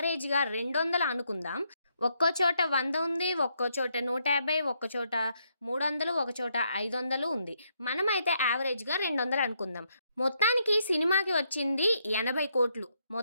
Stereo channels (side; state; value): both; inverted; correlation -0.76